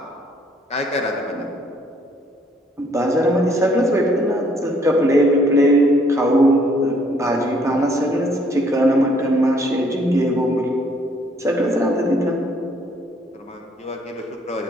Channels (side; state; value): both; normal; correlation 0.65